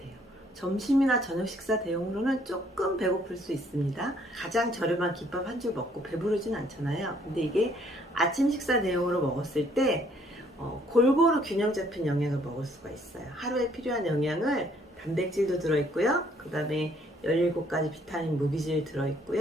점심이나 저녁 식사 대용으로는 조금 배고플 수 있습니다. 가장 저렴한 김밥 한 줄 먹고 배부르진 않잖아요. 근데 이게 아침 식사 대용으로 먹었을 때 골고루 균형 잡힌 영양을 먹을 수가 있어요. 하루에 필요한 영양을 단백질도 들어있고요. 그 다음에 17가지 비타민 무기질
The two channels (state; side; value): normal; both; correlation 0.64